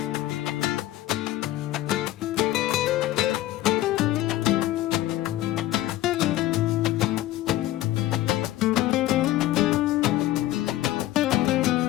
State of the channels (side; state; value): right; quieter; 15.2 dB